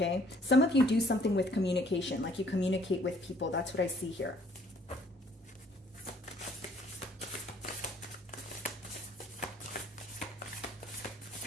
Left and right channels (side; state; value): both; normal; correlation 0.60